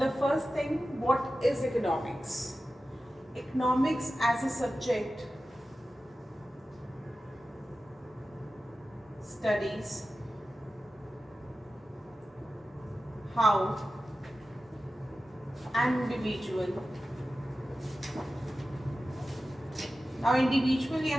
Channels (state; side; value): normal; both; correlation 0.94